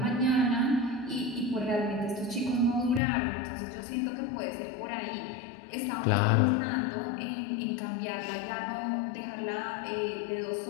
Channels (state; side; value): drops out; right; at 3.0 s